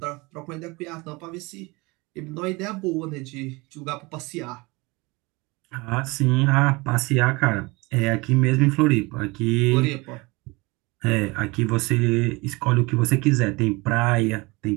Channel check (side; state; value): left; quieter; 24.9 dB